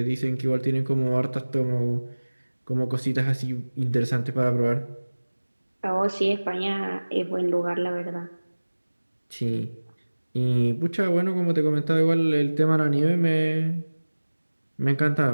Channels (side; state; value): both; inverted; correlation -1.00